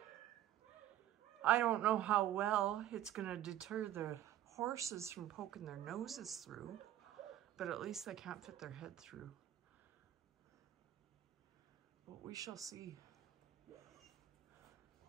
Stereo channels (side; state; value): left; quieter; 12.4 dB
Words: I don't know how well it's gonna deter the horses from poking their noses through, but at least they can't fit their head through. But we shall see.